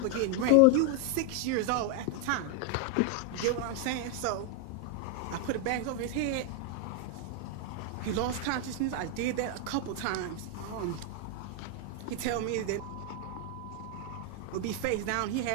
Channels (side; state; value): both; different; correlation 0.01